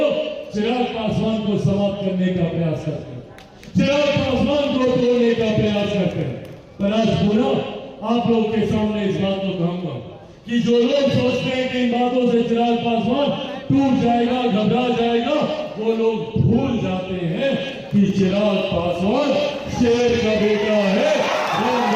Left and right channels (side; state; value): both; identical; correlation 1.00